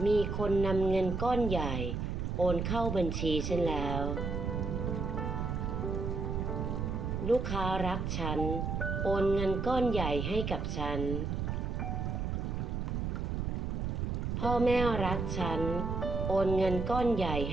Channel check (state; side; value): noise; right; rumble, 1 dB below the sound